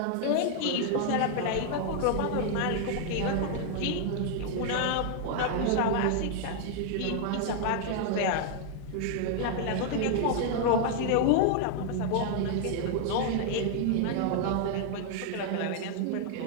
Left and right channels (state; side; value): different; both; correlation 0.00